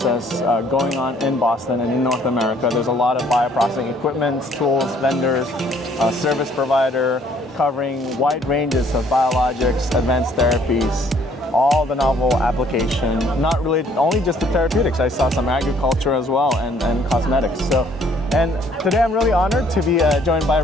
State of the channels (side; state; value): both; normal; correlation 0.61